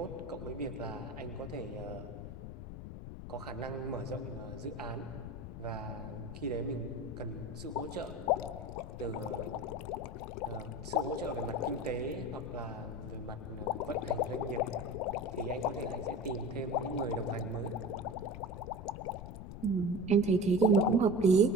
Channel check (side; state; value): left; noise; rumble, 9 dB below the sound